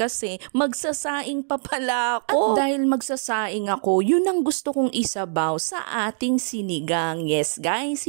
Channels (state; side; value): silent; left; digital silence